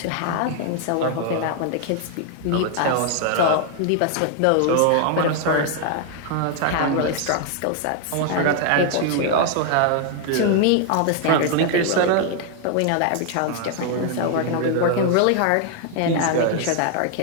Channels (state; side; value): different; both; correlation 0.00